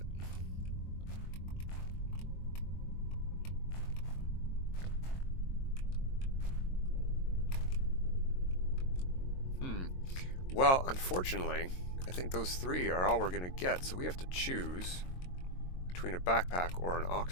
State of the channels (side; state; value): right; late; 22 ms